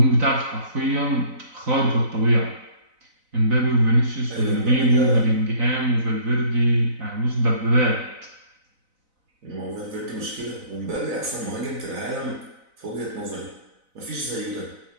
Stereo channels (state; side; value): late; left; 4.0 ms